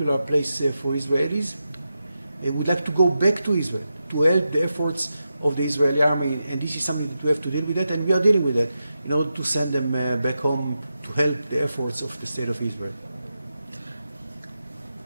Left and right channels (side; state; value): both; inverted; correlation -0.89